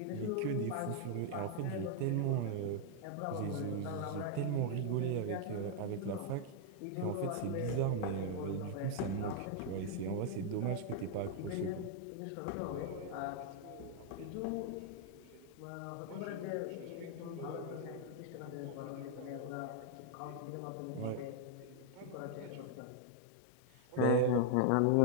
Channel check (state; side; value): different; both; correlation 0.00